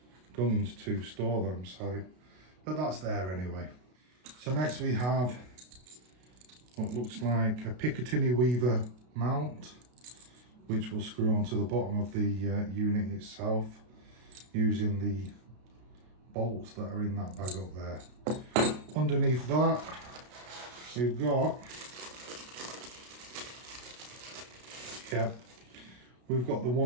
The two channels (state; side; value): late; left; 32 ms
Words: guns to store them, so, but that's there anyway. So next we have what looks like a Picatinny Weaver mount, which will screw onto the bottom of the unit itself using the bolts that are in that bag up there. Underneath that we've got, we've got the